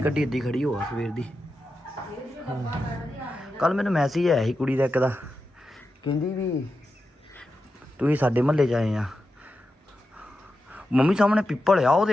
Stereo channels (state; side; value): normal; both; correlation 0.89